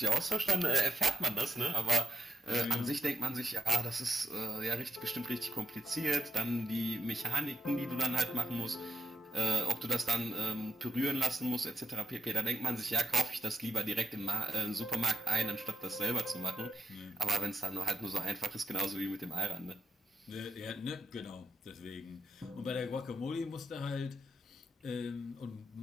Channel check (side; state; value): both; normal; correlation 0.86